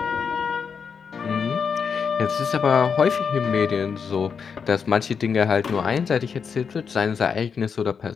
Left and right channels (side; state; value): right; quieter; 6.3 dB